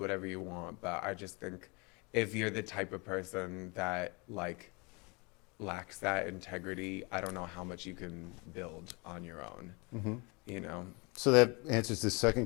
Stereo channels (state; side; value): quieter; right; 29.2 dB